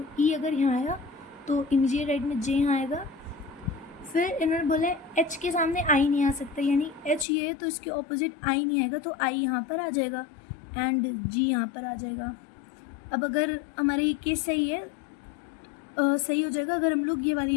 ई अगर यहाँ आया तो इमीडिएट राइट में जे यहाँ आएगा। फिर इन्होंने बोला है एच के सामने आई नहीं आ सकता, यानी एच ये है तो इसके ऑपोजिट आई नहीं आएगा, तो आई यहाँ पर आ जाएगा एंड जी यहाँ पर आ जाएगा। अब अगर हमारे ये केस सही है, सही हो जाएगा अगर हम लोग ये वाली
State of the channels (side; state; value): right; drops out; at 7.2 s